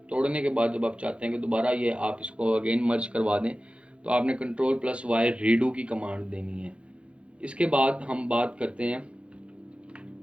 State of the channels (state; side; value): late; left; 0.060 ms